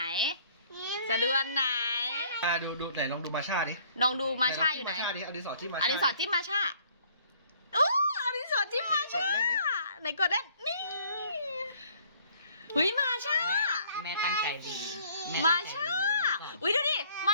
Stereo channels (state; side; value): inverted; both; correlation -0.59